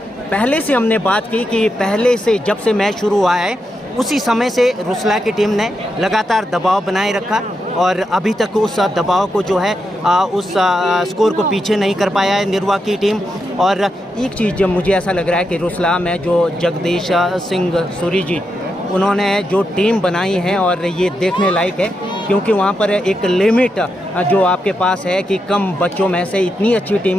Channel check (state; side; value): normal; both; correlation 0.85